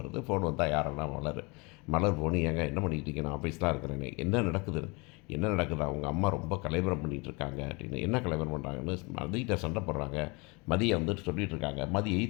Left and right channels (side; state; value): right; quieter; 28.6 dB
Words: ஃபோன் வந்தால் யாருன்னா மலர் ஃபோனு, ஏங்க என்ன பண்ணிகிட்டு இருக்கேன், நான் ஆஃபீஸ் தான் இருக்கிறேன்னு, என்ன நடக்குது அவங்க அம்மா ரொம்ப கலைவரம் பண்ணிகிட்டு இருக்காங்க அப்படின்னு. என்ன கலைவரம் பண்ணுறாங்கன்னு மதிகிட்ட சண்டை போடுறாங்க. மதியை வந்துட்டு சொல்லிகிட்டு இருக்காங்க. மதி